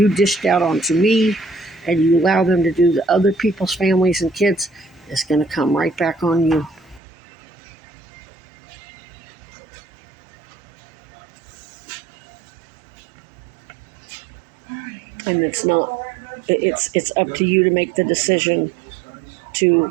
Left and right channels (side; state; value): left; drops out; at 7.0 s